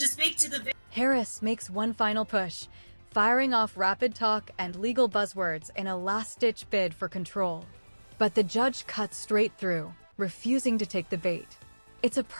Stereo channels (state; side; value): inverted; both; correlation -1.00